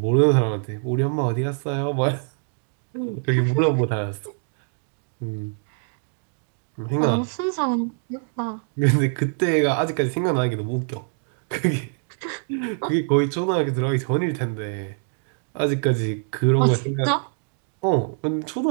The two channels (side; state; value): left; silent; 59 dB below the other